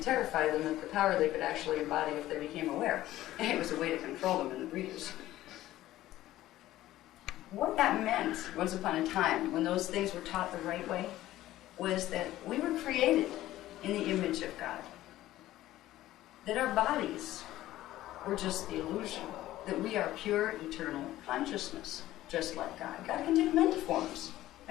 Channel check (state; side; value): quieter; right; 14.9 dB